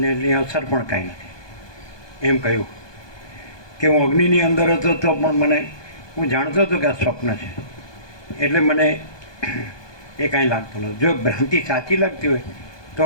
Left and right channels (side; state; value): right; late; 1.2 ms